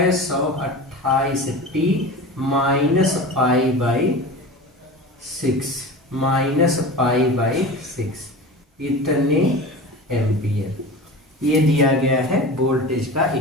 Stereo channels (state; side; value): normal; both; correlation 0.32